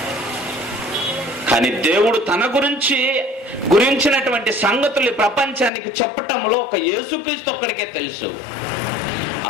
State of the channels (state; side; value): drops out; right; at 5.7 s